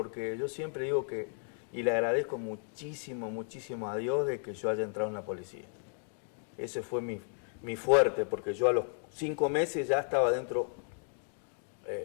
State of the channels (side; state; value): right; silent; 55 dB below the other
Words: yo siempre digo que, y le agradezco muchísimo a Dios de que yo haya entrado en la policía. Ese fue mi fuerte, porque yo a los 5 meses ya estaba dentro